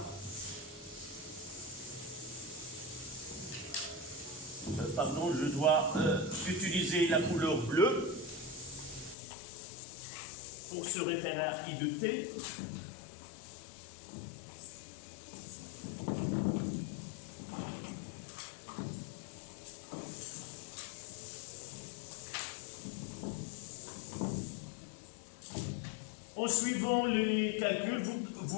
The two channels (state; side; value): drops out; right; at 9.2 s